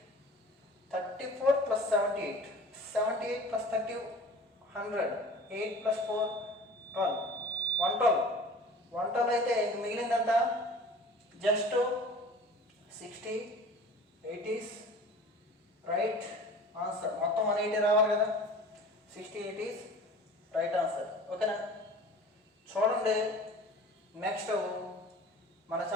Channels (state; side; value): normal; both; correlation 0.42